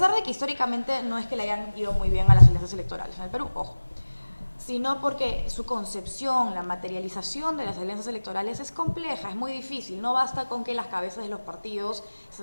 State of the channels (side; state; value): both; inverted; correlation -1.00